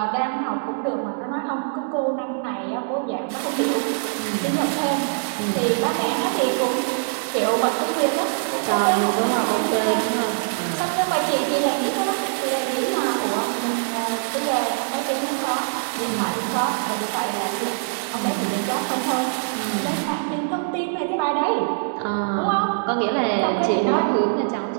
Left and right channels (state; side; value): silent; left; digital silence